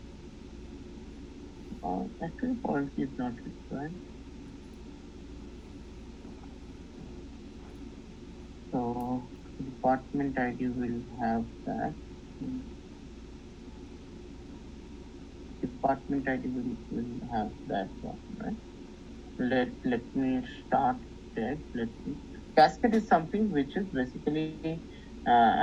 actually foreign key is not required. So department ID will have that. Department ID will have that one, right? Let me start there. Cascade is something which is basically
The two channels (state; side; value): identical; both; correlation 1.00